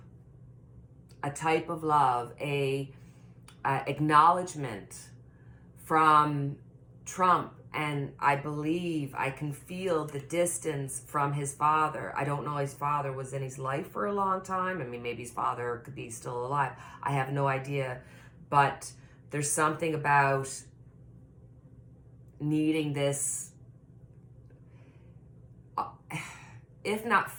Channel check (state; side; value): identical; both; correlation 1.00